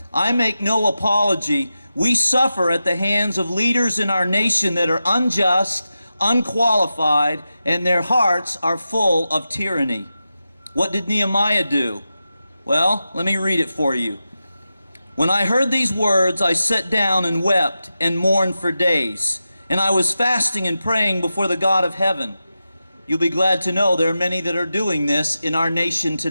I make no apology. We suffer at the hands of leaders in our nation that are unjust, unqualified, and their hearts are full of tyranny. What did Nehemiah do? Well, let me read it for you. When I heard these words, I sat down and wept and mourned for days, and I was fasting and praying before the God of heaven. You'll be glad to know there are many that are doing this in our nation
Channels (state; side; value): inverted; both; correlation -0.91